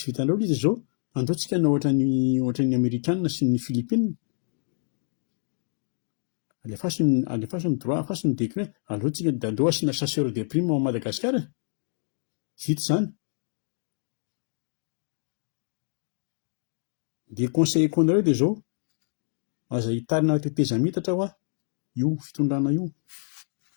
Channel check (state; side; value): silent; right; 60 dB below the other